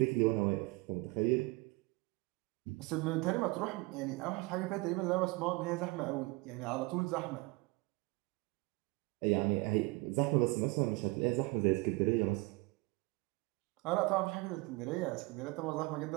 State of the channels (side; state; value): left; quieter; 24.4 dB